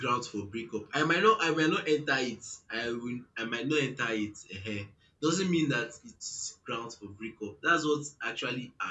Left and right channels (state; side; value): identical; both; correlation 1.00